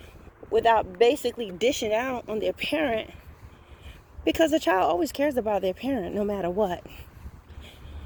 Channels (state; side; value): identical; both; correlation 1.00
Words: without basically dishing out on their parent. Because the child always cares about their parent no matter what.